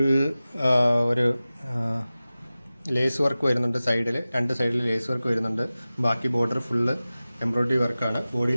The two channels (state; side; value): inverted; both; correlation -0.96